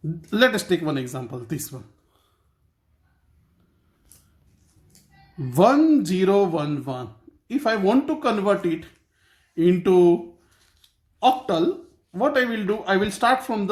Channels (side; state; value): both; identical; correlation 1.00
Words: let us take one example, this one. 1011. If I want to convert it into octal, what I will do, I will start from